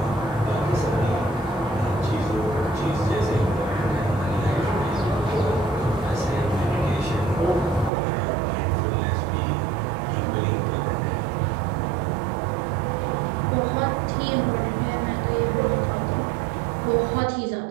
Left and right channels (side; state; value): left; drops out; at 7.9 s